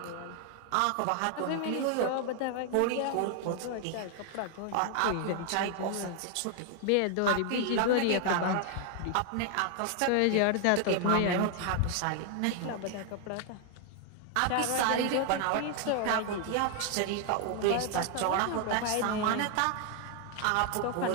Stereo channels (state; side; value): different; both; correlation 0.00